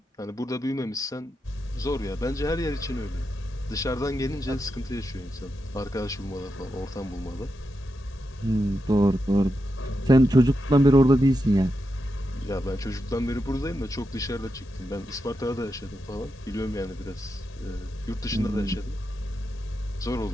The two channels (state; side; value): normal; both; correlation 0.87